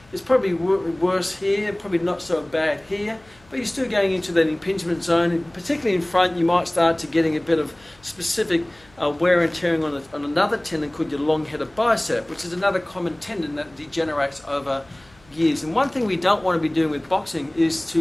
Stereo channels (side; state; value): left; noise; hum, 29 dB below the sound